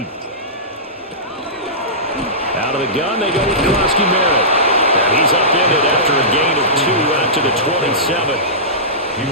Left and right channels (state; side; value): normal; both; correlation -0.20